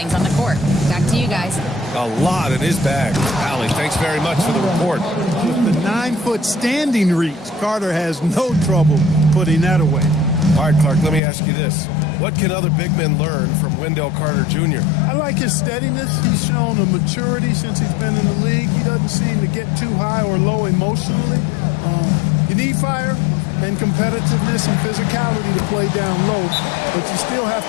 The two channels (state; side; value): drops out; right; at 11.2 s